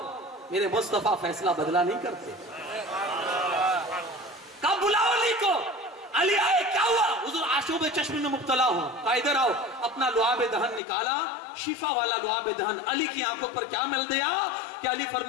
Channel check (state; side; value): drops out; right; at 10.8 s